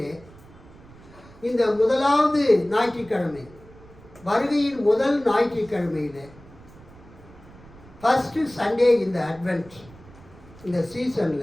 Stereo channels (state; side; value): noise; right; rumble, 22 dB below the sound